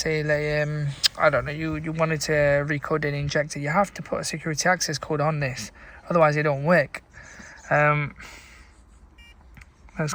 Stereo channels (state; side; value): identical; both; correlation 1.00